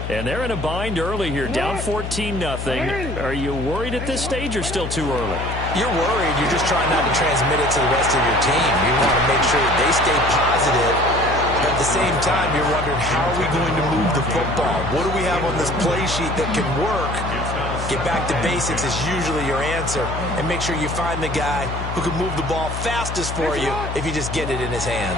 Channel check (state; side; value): noise; left; hum, 6 dB below the sound